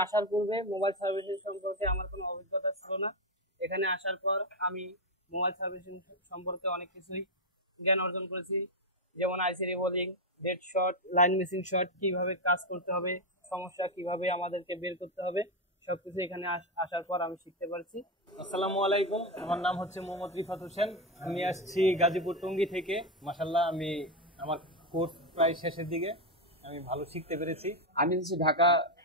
আসার পূর্বে মোবাইল সার্ভিসিং সম্পর্কে আমার কোনো অভিজ্ঞতা ছিল না। এখানে আসার পর আমি মোবাইল সার্ভিসিং সম্পর্কে অনেক কিছুই জ্ঞান অর্জন করেছি, যেমন IC reballing, dead short, line missing short, কিভাবে কাজ করতে হবে, সমস্যা কিভাবে আমাদেরকে বের করতে হবে, সবকিছু এখানে আসার পর আমি শিখতে পারছি। আসসালামু আলাইকুম, আমার নাম হচ্ছে মোহাম্মদ রিফাত হোসেন। আমি আসছি গাজীপুর টঙ্গী থেকে। মাশাআল্লাহ, আমি আমার কোর্স প্রায় শেষের দিকে, আমি ভালো শিখতে পেরেছি। আমি হচ্ছে ঢাকা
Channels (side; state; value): both; normal; correlation 0.07